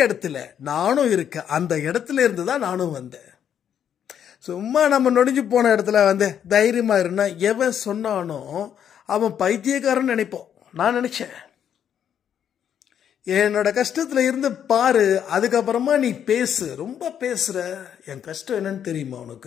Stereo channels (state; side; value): quieter; right; 9.0 dB